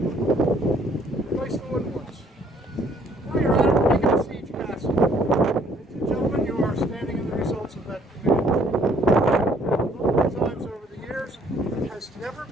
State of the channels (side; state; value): both; normal; correlation 0.62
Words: Replace the wooden ones. Now you're at it, we're making a siege castle. Ladies and gentlemen, you are standing in the results of that command. Multiple times over the years, it has never